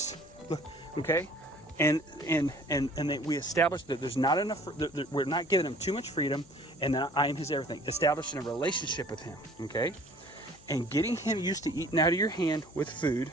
okay? And we establish that there's not enough, that we're not giving him too much freedom, and that I am his everything. Establishing a relationship with him, okay? And getting him used to eating out of your hand with food,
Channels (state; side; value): noise; left; hum, 25 dB below the sound